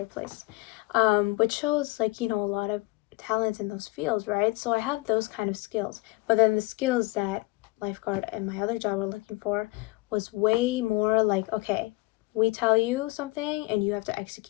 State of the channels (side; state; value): right; quieter; 22.9 dB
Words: place. Which shows, like, a lot of talent in those fields, right? So I have those kind of skills. But then the skills that lifeguard and my other job were looking for was way more like, okay, we tell you something and you have to